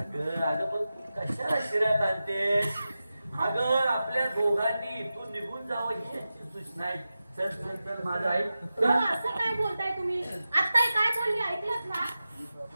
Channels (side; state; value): both; inverted; correlation -0.93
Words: अगं पण कशाला शिऱ्यात आणतेस? अगं आपल्या दोघांनी इथून निघून जावं ही याची सूचना आहे. चल चल चल माझा आई. असं काय बोलताय तुम्ही? आत्ता काय बोलली ऐकलंत ना?